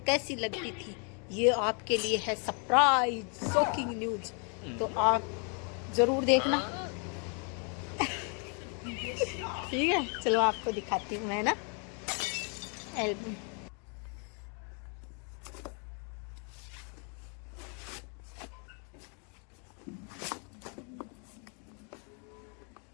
कैसी लगती थी। ये आपके लिए है सरप्राइज शॉकिंग न्यूज, तो आप जरूर देखना। ठीक है, चलो आपको दिखाती हूँ मैं ना एल्बम।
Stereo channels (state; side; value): quieter; right; 38.5 dB